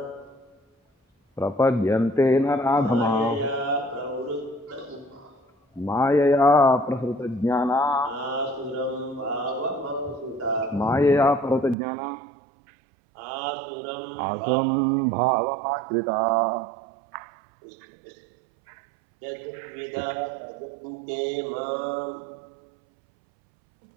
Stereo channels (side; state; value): left; drops out; at 11.8 s